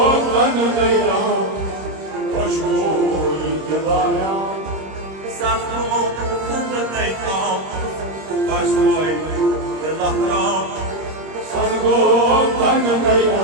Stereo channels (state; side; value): late; left; 26 ms